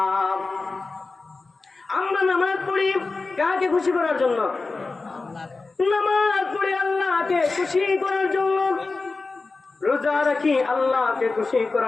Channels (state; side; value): quieter; right; 3.8 dB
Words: আমরা নামাজ পড়ি কাকে খুশি করার জন্য? নামাজ পড়ি আল্লাহকে খুশি করার জন্য। রোজা রাখি আল্লাহকে খুশি